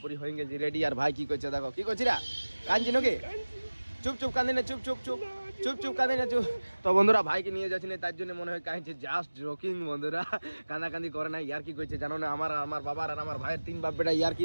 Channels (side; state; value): both; inverted; correlation -1.00